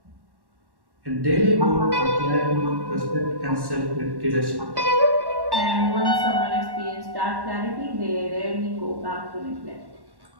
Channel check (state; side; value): late; left; 1.1 ms